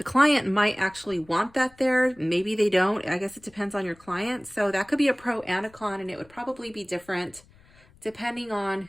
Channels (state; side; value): noise; left; rumble, 28 dB below the sound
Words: client might actually want that there. Maybe they don't. I guess it depends on your client. So that could be a pro and a con, and it would probably be different depending on